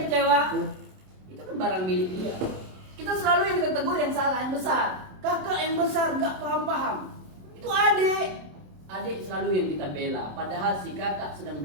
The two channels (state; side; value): late; left; 27 ms